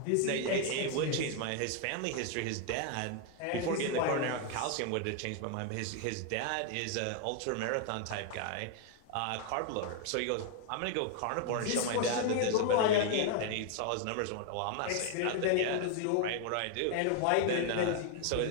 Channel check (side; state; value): both; different; correlation 0.00